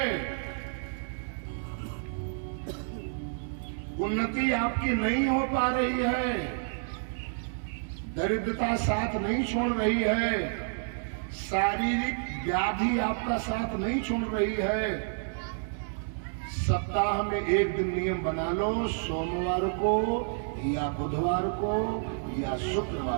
उन्नति आपकी नहीं हो पा रही है, दरिद्रता साथ नहीं छोड़ रही है, शारीरिक व्याधि आपका साथ नहीं छोड़ रही है। सप्ताह में एक दिन नियम बना लो, सोमवार को या बुधवार को या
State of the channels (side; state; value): left; silent; digital silence